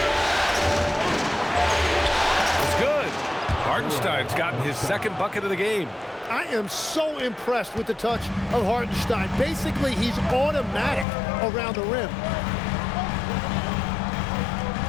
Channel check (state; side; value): drops out; right; at 11.1 s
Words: It's good. Hartenstein's gotten his second bucket of the game. I am so impressed with the touch of Hartenstein. Basically, he's automatic around the rim.